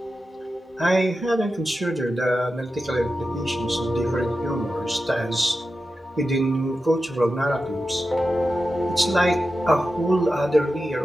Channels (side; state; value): both; normal; correlation 0.91